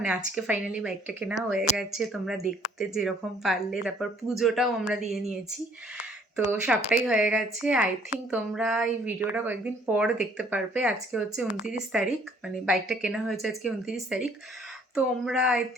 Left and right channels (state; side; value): normal; both; correlation 0.60